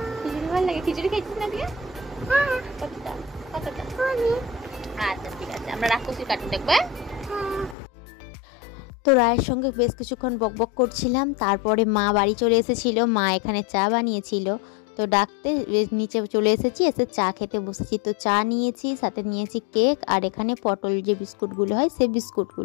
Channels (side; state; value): right; drops out; at 7.8 s